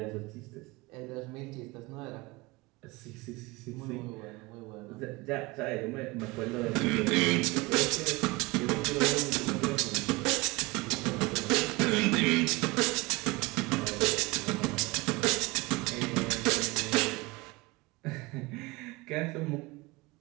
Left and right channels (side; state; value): left; quieter; 23.8 dB